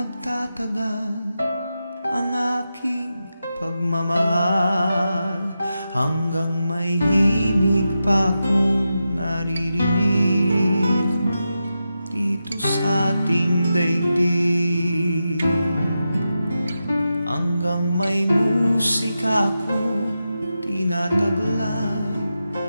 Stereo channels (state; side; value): inverted; both; correlation -0.90